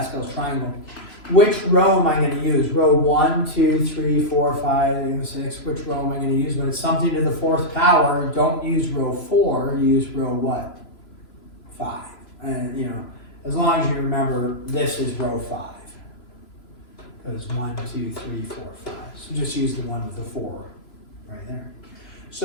triangle. Which row am I going to use? Row 1, 2, 3, 4, 5, 6. Which row am I going to use? When it's something to the 4th power, don't use row 4. Use row what? 5. And you know, as long as you remember, this is row 5. Because 1, 2, 3, 4, 5. So just use the one with the 4 right there.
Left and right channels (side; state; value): right; late; 3.0 ms